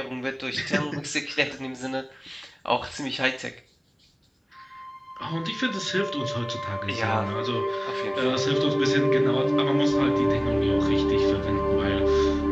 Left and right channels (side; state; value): both; identical; correlation 1.00